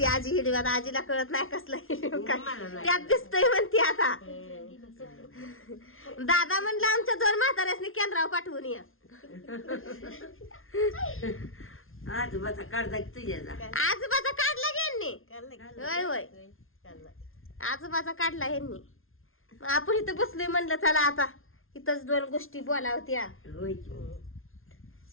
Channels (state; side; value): late; right; 0.61 ms